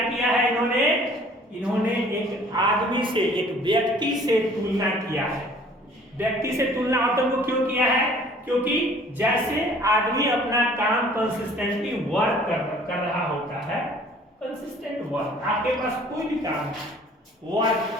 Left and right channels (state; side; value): normal; both; correlation 0.53